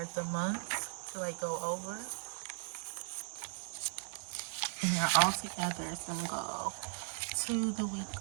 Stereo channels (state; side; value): silent; left; digital silence